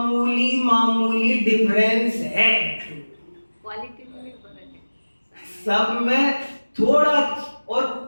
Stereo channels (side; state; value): both; inverted; correlation -1.00